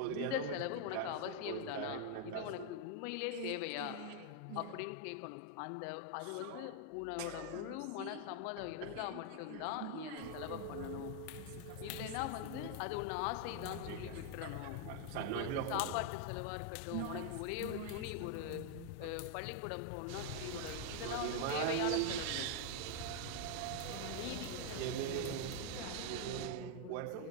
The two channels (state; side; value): different; both; correlation 0.00